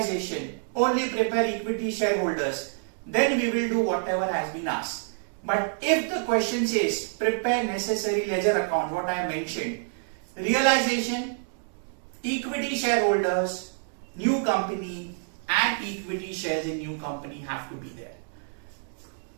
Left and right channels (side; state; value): left; silent; digital silence